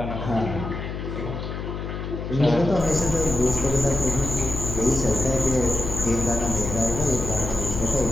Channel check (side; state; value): left; noise; hum, 6 dB below the sound